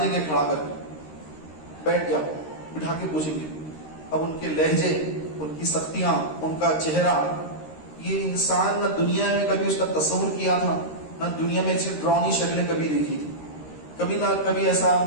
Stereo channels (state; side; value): late; right; 13 ms